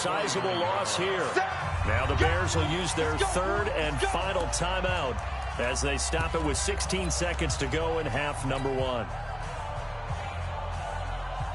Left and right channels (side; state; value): both; identical; correlation 1.00